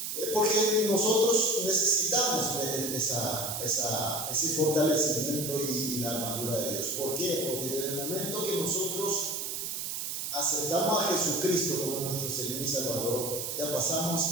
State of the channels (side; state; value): right; noise; hiss, 4 dB below the sound